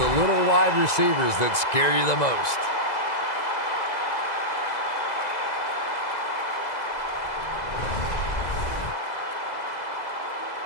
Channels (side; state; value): right; late; 2.0 ms